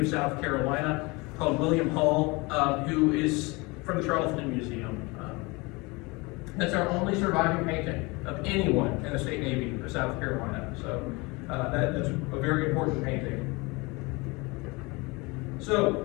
of South Carolina called William Hall, who is from the Charleston Museum. That's our only surviving painting of anyone in the State Navy of South Carolina. So that's a very important painting. So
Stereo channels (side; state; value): right; quieter; 25.7 dB